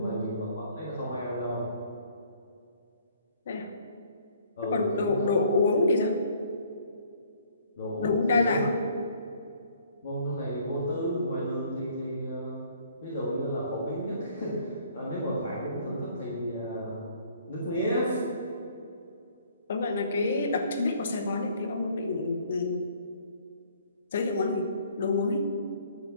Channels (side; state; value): both; inverted; correlation -0.59